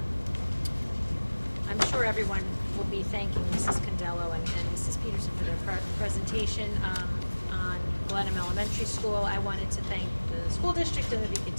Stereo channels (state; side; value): inverted; both; correlation -1.00